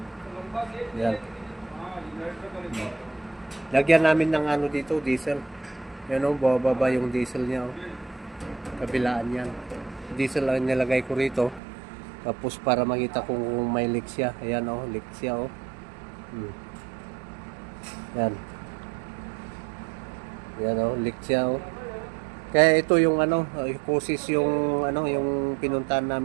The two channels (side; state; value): left; drops out; at 11.6 s